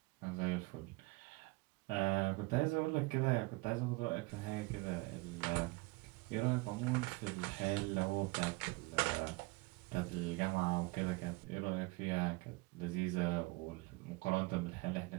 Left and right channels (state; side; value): quieter; left; 25.1 dB